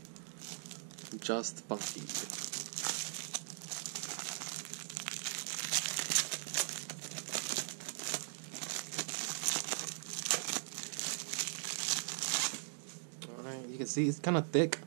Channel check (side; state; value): left; silent; digital silence